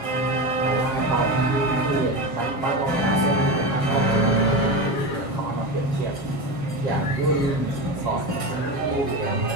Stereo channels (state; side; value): late; right; 7.4 ms